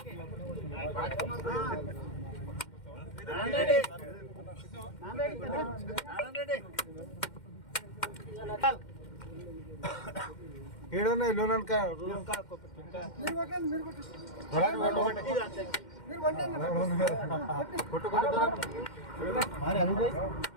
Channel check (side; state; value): right; late; 2.1 ms